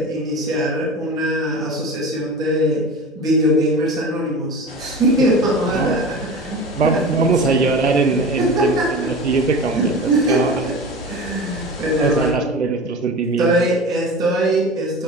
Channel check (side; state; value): both; normal; correlation 0.33